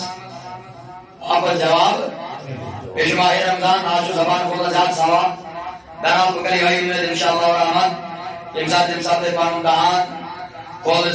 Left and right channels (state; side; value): identical; both; correlation 1.00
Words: اَپر جواب بیٚیہِ چھُ ماہِ رمضان آز چھُ زبان کھولان زیادٕ سوال بہرحال بہٕ کرٕ یِہوٚے اُمید انشاءاللہ الرحمن ییٚمہِ ساتہٕ تُہۍ پنُن دہان کھولنٕچ